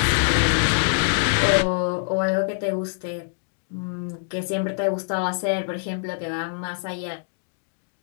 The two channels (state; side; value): silent; right; digital silence